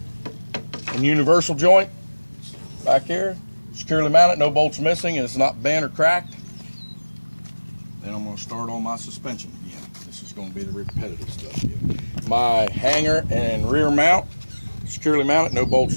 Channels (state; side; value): inverted; both; correlation -1.00